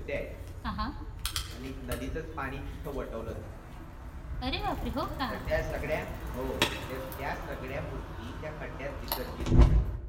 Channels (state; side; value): identical; both; correlation 1.00